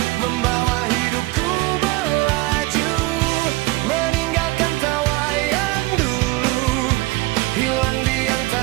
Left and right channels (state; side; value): quieter; left; 20.9 dB